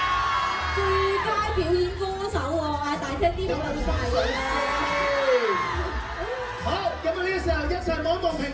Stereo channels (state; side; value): identical; both; correlation 1.00